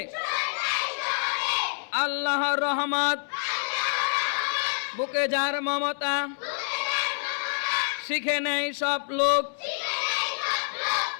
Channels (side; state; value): right; silent; 60 dB below the other